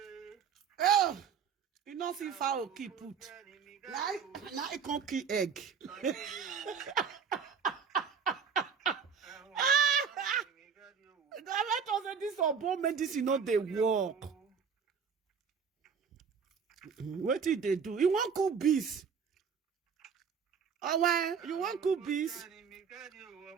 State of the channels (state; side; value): quieter; left; 6.5 dB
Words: Oh, you don't see foul keep put. Now I can't keep egg. Let us say this urban medicine not they work. What did they do? You want cook bees? Oh, why? You want cook bees?